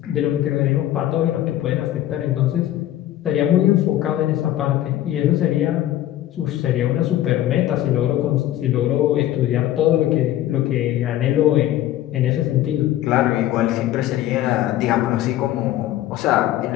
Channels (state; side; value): quieter; right; 13.4 dB